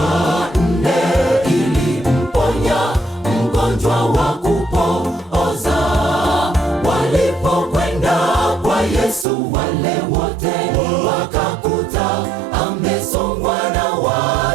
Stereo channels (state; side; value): drops out; left; at 9.2 s